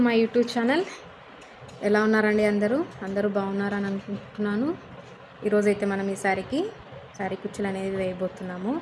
my YouTube channel. ఎలా ఉన్నారండి? అందరూ బాగున్నారని అనుకుంటున్నాను. ఈరోజైతే మనం ఈ శారీ కుచ్చులు అనేది వేయబోతున్నాము.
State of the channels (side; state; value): both; identical; correlation 1.00